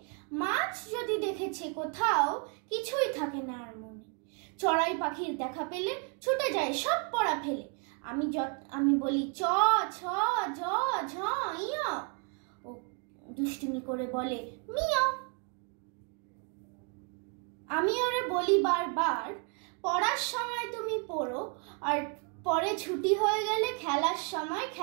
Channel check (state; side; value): quieter; left; 37.7 dB